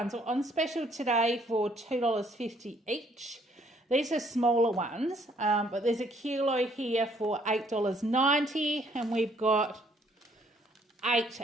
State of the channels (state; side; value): normal; both; correlation 0.65